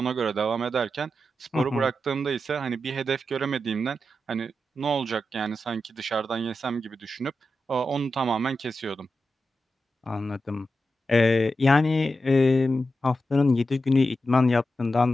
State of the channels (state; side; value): normal; both; correlation 0.89